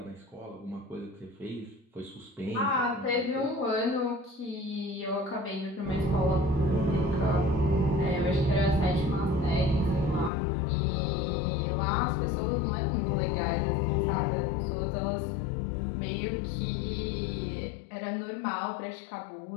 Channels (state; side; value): drops out; right; at 10.3 s